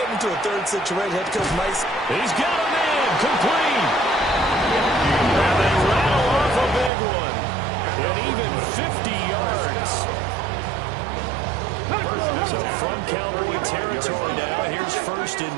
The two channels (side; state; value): left; drops out; at 6.9 s